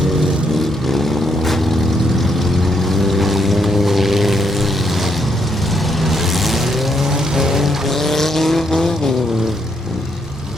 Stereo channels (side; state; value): both; normal; correlation 0.75